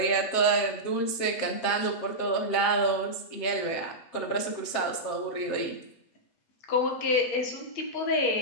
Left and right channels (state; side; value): late; right; 7.5 ms